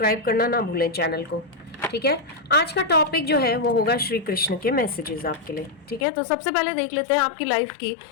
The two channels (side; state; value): right; drops out; at 6.1 s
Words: करना ना भूलें चैनल को। ठीक है, आज का टॉपिक जो है वो होगा श्री कृष्ण के मैसेजेस आपके लिए। ठीक है, तो सबसे पहले देख लेते हैं आपकी लाइफ की